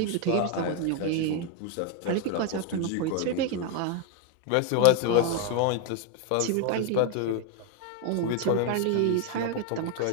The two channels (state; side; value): different; both; correlation 0.01